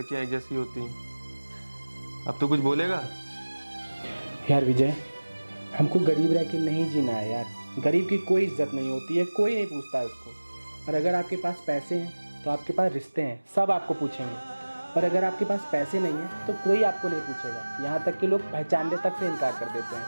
एक जैसी होती हैं। अब तो कुछ बोलेगा? यार विजय, हमको गरीब रह के नहीं जीना है यार। गरीब की कोई इज्जत नहीं होती है, कोई नहीं पूछता है उसको। और अगर आपके पास पैसे हैं तो आपके पास रिश्ते हैं, सब आपको पूछेंगे। और अगर आपके पास पैसे नहीं हैं तो कोई आपको नहीं पूछेगा। यहाँ तक कि लोग पहचानने तक से इनकार कर देते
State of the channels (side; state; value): both; inverted; correlation -1.00